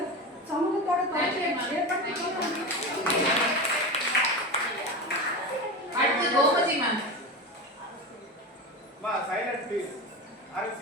சமூகத்தோடு தொடர்ச்சியை ஏற்படுத்தி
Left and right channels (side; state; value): both; normal; correlation 0.24